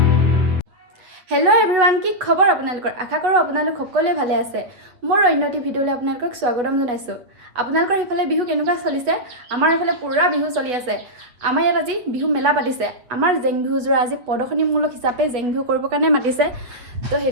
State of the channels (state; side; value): late; left; 8.0 ms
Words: हेलो एभ्रिवान की खबर आपनालोकर आशा करूँ आपनालोक सकलोए भाले आछे मोर अन्य एटी भिडिओले आपनालोকক स्वागतम जनाइছো आपनालोकर हेफाले बिहु केनेকুৱা चलिছে आमार हेफाले पूरा बिहु चलि आछे आमार यात আজি बिहु मेला पातिছে आमार जेং बिहुजोरा আজি प्रदर्शनीमूलक हिसापे जेং बिहु करिবৰ কাৰণে मातिছে तो